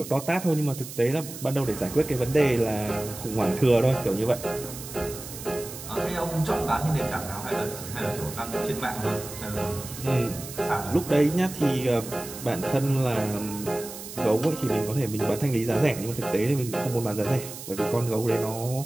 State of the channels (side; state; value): right; noise; hiss, 12 dB below the sound